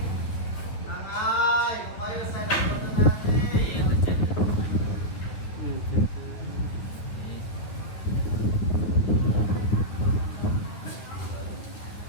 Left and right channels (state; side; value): late; right; 9.9 ms